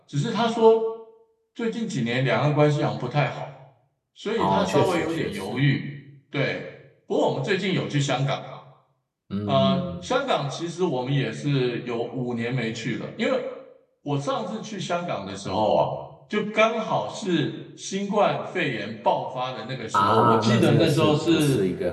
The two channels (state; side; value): identical; both; correlation 1.00